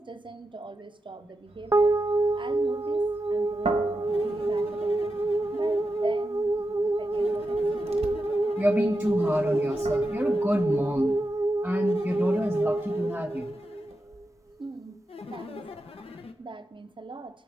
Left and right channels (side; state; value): both; normal; correlation 0.88